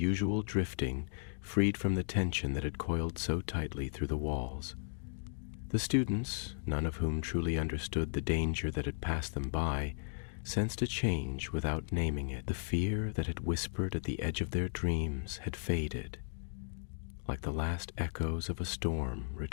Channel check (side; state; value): right; silent; digital silence